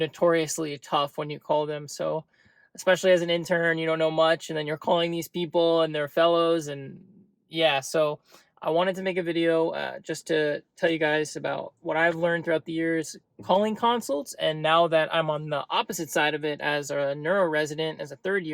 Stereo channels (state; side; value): identical; both; correlation 1.00